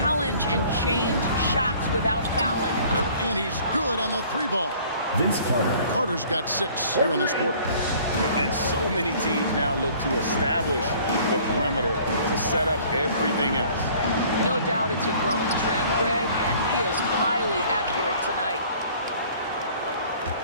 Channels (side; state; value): both; inverted; correlation -0.53